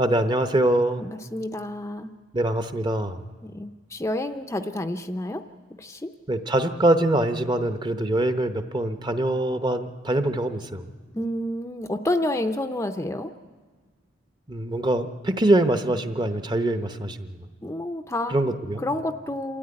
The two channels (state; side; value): normal; both; correlation 0.73